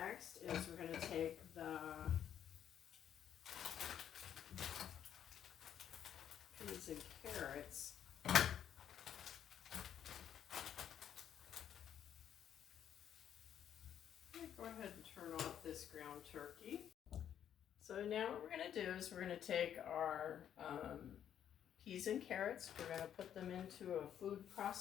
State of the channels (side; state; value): right; quieter; 9.6 dB